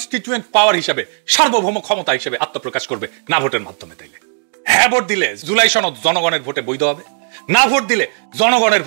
পাওয়ার হিসেবে সার্বভৌম ক্ষমতা হিসেবে আত্মপ্রকাশ করবে না ভোটের মাধ্যমে। তাইলে হ্যাঁ ভোট দিলে জুলাই সনদ জনগণের ভোটে বৈধ হবে, না ভোট দিলে জনগণের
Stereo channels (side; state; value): left; silent; digital silence